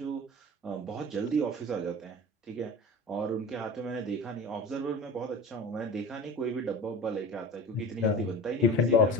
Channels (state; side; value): normal; both; correlation 0.35